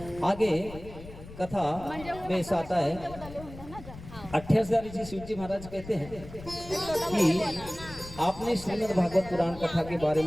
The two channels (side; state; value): left; noise; rumble, 15 dB below the sound